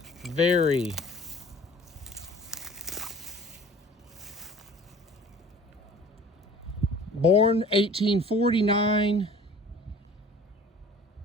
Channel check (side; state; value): both; normal; correlation 0.47